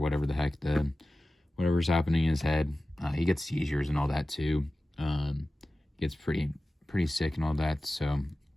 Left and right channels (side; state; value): both; normal; correlation 0.96